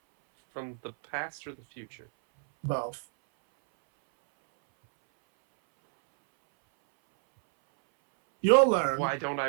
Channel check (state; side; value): silent; left; 59 dB below the other